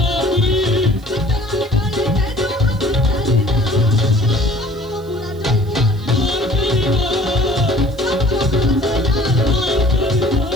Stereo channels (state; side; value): noise; right; hiss, 27 dB below the sound